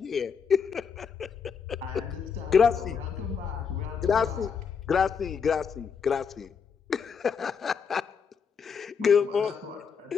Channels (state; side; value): quieter; right; 6.3 dB